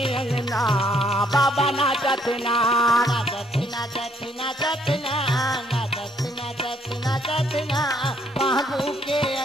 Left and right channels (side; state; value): both; normal; correlation 0.68